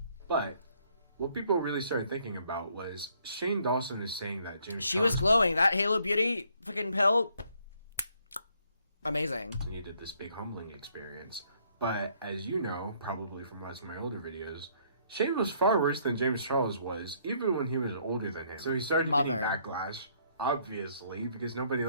But what people really started thinking about was Shane Dawson is saying that James She Charles was glowing. That Halo Beauty fucking pill. Amazing. needed this big humbling experience. But as you know, probably from watching my older videos, Shane was far worse than James Charles was, even when he was older than him. So he started getting backlash, obviously, because nobody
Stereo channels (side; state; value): both; inverted; correlation -0.67